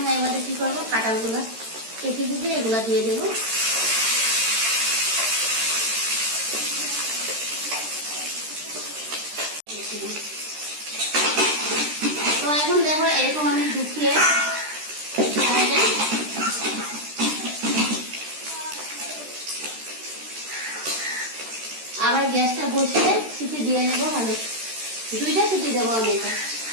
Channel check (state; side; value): late; left; 13 ms